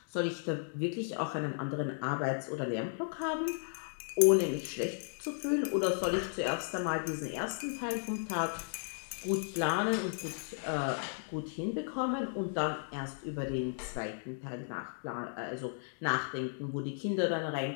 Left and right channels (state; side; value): silent; right; digital silence